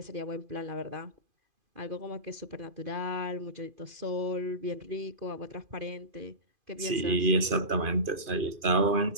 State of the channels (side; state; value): left; late; 2.5 ms